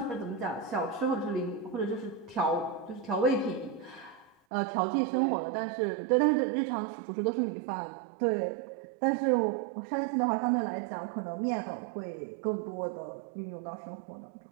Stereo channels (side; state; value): left; drops out; at 4.4 s